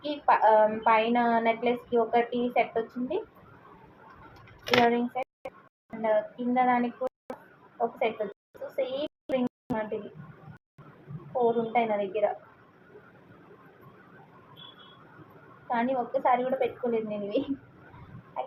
పైన నెక్లెస్కి ఒకటి సెట్ వచ్చింది ఇయర్ రింగ్ సెట్. అండ్ కింద దానికి కూడా ఒక సెట్ వచ్చింది. సో సేమ్ రింగ్ లాంటివి 4 ఉంటాయి నా దగ్గర. కానీ ఒక్కసారి కూడా పెట్టుకోలేదు నేను ఇవి.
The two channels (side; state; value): both; identical; correlation 1.00